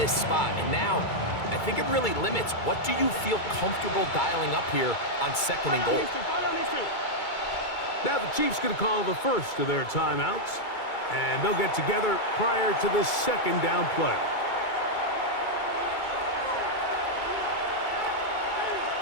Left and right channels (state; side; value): late; right; 2.3 ms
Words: spot. And now, I think it really limits what do you feel comfortable dialing up here on second and goal. Now the Chiefs going to call the first of their timeouts. And they'll get together prior to the second down play.